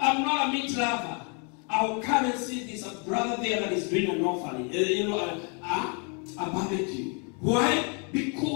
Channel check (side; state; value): right; quieter; 37.0 dB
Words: not a meat lover, I'll come and see this a brother there that is doing an offering. A barbecue. Why?